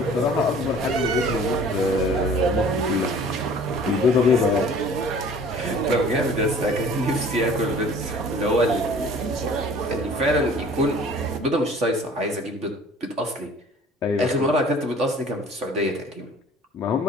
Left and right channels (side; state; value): both; normal; correlation 0.49